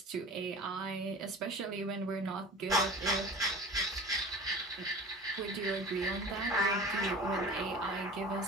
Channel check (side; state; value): both; normal; correlation 0.38